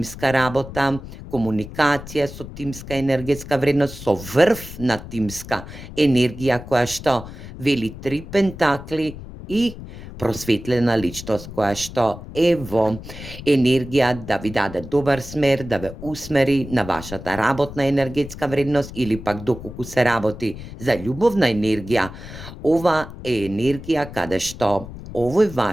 работа, комуникација со тимска енергетска вредност, со врв на тимска енергија која што вели 3 пентакли и просветлена личност која што е во енергија да ви даде добар смер, да ве усмери на вашата работна енергетска вредност или пак доколку се работи за љубовна енергија. Ова е енергија каде што овој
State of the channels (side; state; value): left; noise; rumble, 13 dB below the sound